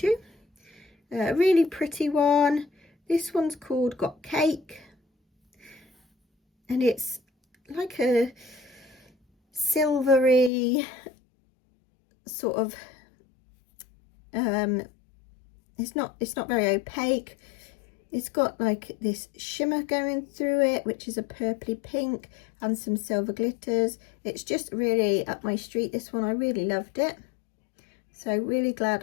A really pretty one. This one's called Got Cake, and it's like a silvery sort of it's not very opaque. It's got like this shimmer going through it, which is a purpley pink, and some silver glitters. It's just really up my street, this one. I really loved it, so really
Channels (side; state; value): right; drops out; at 10.5 s